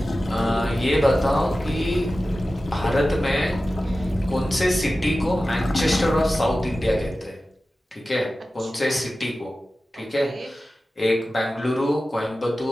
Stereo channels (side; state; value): both; normal; correlation 0.95